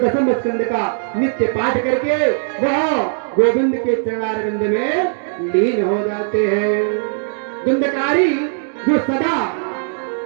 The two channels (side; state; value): left; silent; digital silence